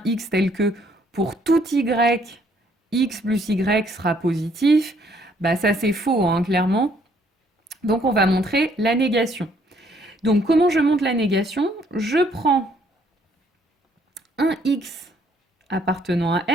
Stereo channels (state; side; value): normal; both; correlation 0.66